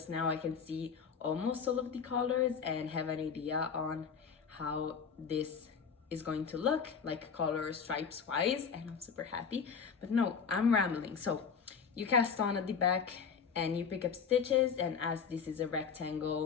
now I can see almost all of the colors and have an idea on how this is going to look, like color stripes wise, and I'm super happy. But no, I'm rambling. So you cast on at the back and you pick up stitches, and as this is a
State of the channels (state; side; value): quieter; right; 6.3 dB